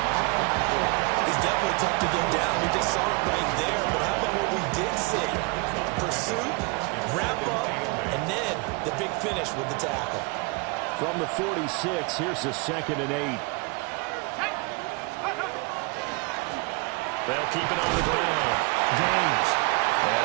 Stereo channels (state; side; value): quieter; left; 29.0 dB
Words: He's definitely tough to get down. We just saw it right there. But how about what we did see? Pursuit, wrap up, and then the big finish with the tackle. From the 46, here's the 2nd and 8. They'll keep it on the ground. Gaines. And